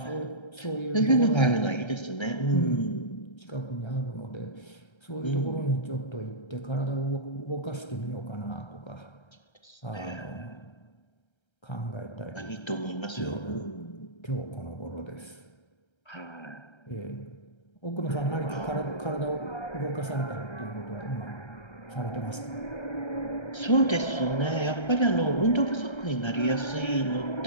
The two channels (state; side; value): late; right; 1.3 ms